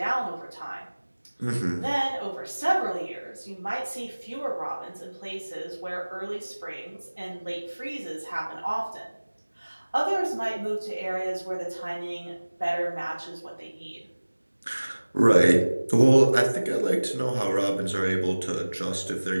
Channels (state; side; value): inverted; both; correlation -1.00